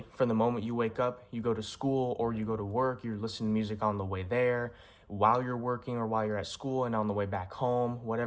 from the moment you wake up, you go to school or you go to work, you're listening to music on the way there, while you're working or while you're at school, and on the way back home,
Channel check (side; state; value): both; identical; correlation 1.00